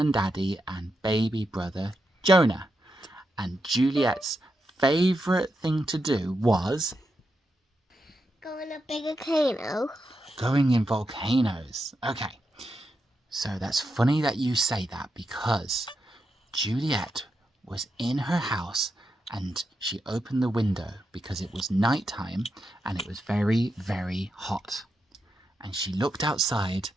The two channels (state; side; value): normal; both; correlation 0.85